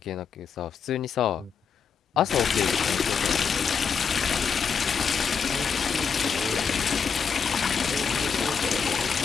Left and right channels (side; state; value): right; quieter; 6.3 dB